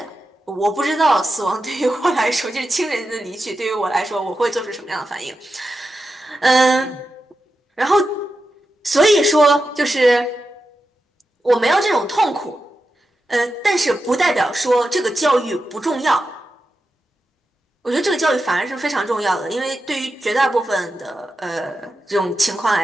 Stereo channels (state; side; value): normal; both; correlation 0.90